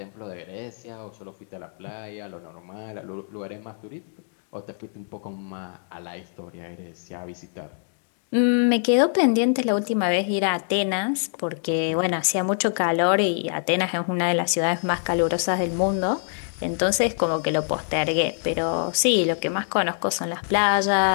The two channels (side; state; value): right; silent; digital silence